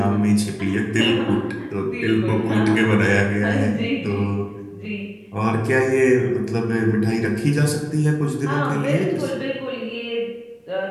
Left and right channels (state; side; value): identical; both; correlation 1.00